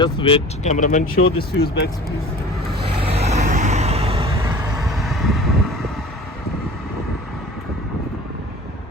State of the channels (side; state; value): both; normal; correlation 0.42